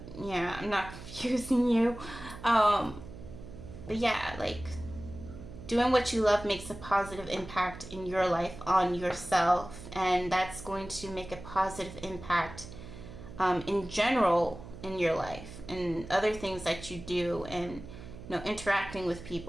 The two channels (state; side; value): noise; right; hum, 14 dB below the sound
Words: yeah, I'm not confusing you. But yeah, like, doing what you love makes a positive impact in your life on yourself, and that's going to make a positive impact in general in your life and other things that you do, and, you know, interacting with